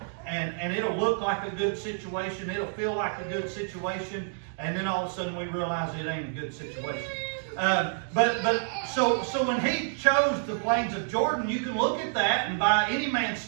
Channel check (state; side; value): silent; left; digital silence